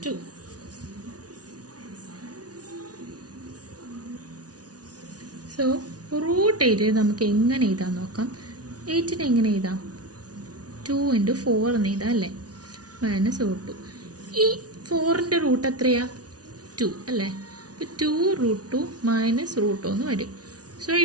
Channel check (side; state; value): left; late; 0.68 ms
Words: 2. So root 8 നമുക്ക് എങ്ങനെ എഴുതാൻ നോക്കാം. 8 എങ്ങനെ എഴുതാം? 2 × 4 എന്ന് എഴുതാം അല്ലേ. Minus root 2. ഈ 4ന്റെ റൂട്ട് എത്രയാ? 2 അല്ലേ. അപ്പോൾ 2 റൂട്ട് 2 മൈനസ് റൂട്ട് 2 എന്ന് വരും. സോ